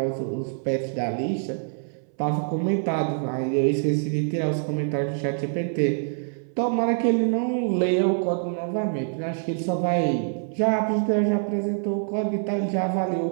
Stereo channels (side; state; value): left; silent; 61 dB below the other